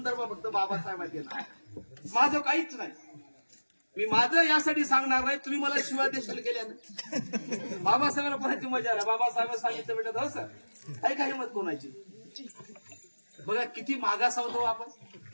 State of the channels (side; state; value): both; inverted; correlation -1.00